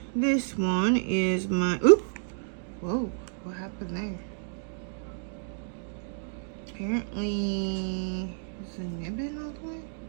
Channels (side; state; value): left; silent; digital silence